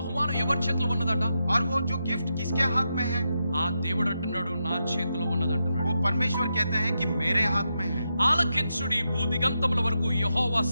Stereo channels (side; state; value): both; inverted; correlation -0.86